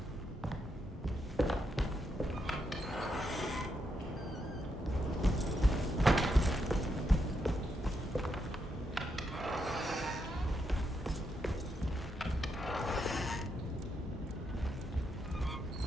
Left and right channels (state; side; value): normal; both; correlation 0.81